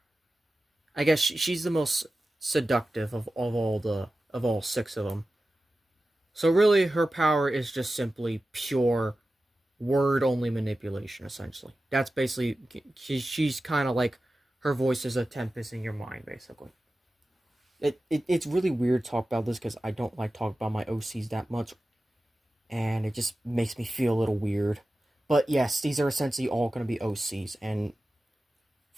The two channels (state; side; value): normal; both; correlation 0.94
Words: I guess she's the most seductive of all six of them. So really, her power is just simply pure word only manipulation. Essentially, that's basically she's kind of like her voice is a tempest in your mind, basically. It's really weird to talk about this because I don't like talking about my OCs that much, and it just makes me feel a little weird. But yes, these are essentially all going to be OCs, and